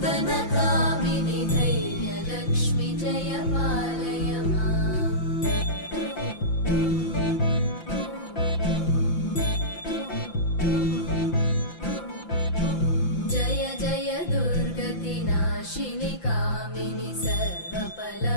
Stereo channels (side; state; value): right; late; 5.8 ms